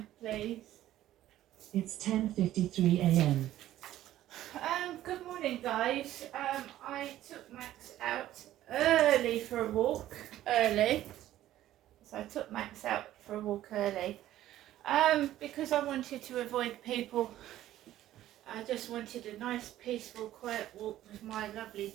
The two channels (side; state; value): left; quieter; 13.5 dB